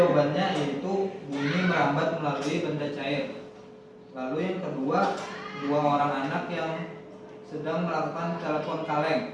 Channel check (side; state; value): both; identical; correlation 1.00